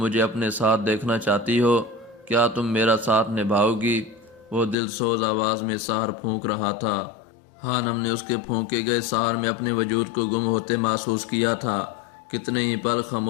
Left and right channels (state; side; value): drops out; right; at 4.8 s